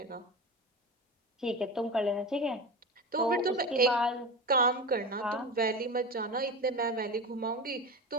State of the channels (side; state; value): both; normal; correlation 0.26